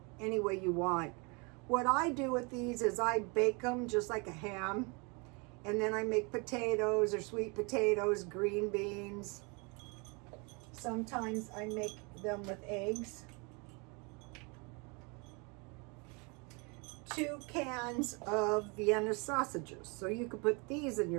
any way you want. What I do with these is I bake them just like a ham, and then I make potatoes or sweet potatoes, green beans. Sometimes I make them with eggs. 2 cans of Vienna sausages. So you could put these in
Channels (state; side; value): quieter; left; 31.1 dB